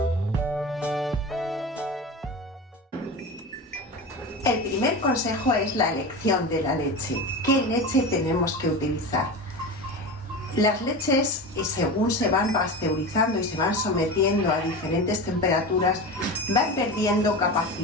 El primer consejo es la elección de la leche. ¿Qué leche tenemos que utilizar? Las leches, según se van pasteurizando y se van sometiendo a diferentes temperaturas, van perdiendo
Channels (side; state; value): both; normal; correlation 0.27